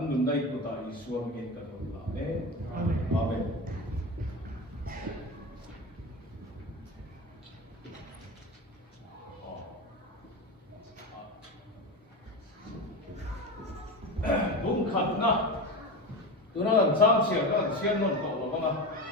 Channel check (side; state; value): both; normal; correlation 0.23